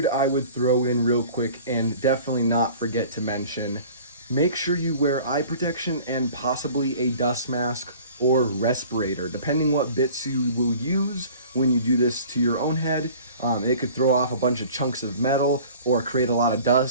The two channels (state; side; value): inverted; both; correlation -0.46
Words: I would throw in real quick and definitely not forget to mention, make sure you wear eye protection and possibly a dust mask or respirator, depending what bits you will use when you do this to your own head. It could throw off a bunch of chunks of metal or create a lot of